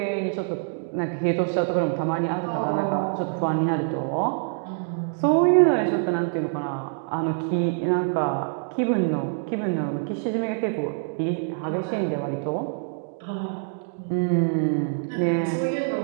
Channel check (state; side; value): silent; left; digital silence